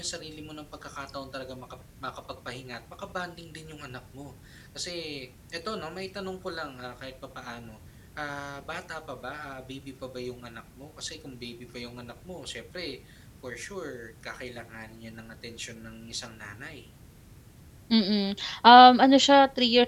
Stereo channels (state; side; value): identical; both; correlation 1.00